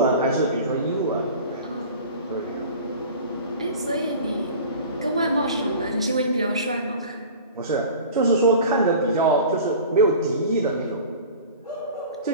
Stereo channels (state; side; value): inverted; both; correlation -0.40